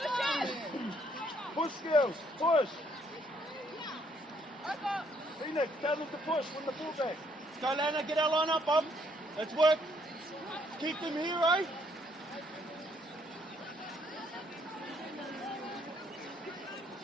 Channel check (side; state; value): both; normal; correlation 0.68